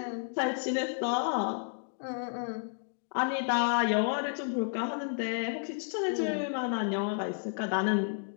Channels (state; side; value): silent; right; digital silence